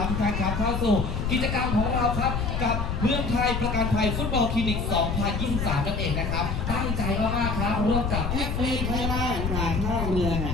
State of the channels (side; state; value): left; noise; rumble, 2 dB below the sound